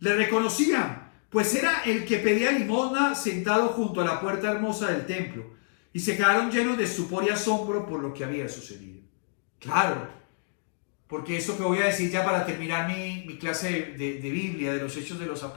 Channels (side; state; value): right; silent; digital silence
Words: reconocían, pues era el que pedía limosna sentado junto a la puerta hermosa del templo. Y se quedaron llenos de estupor y asombro por lo que había sucedido. Claro. Porque eso que voy a decir ya para terminar mi clase de Biblia, de los Hechos de los